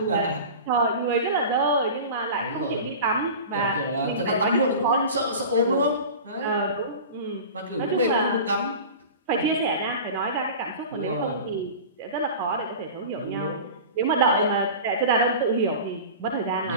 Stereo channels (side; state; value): both; inverted; correlation -0.34